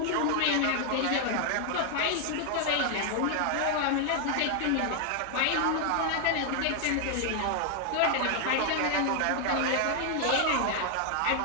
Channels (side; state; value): both; different; correlation 0.00